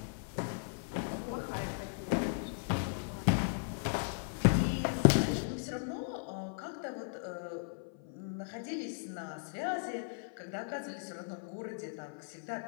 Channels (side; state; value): right; silent; 53 dB below the other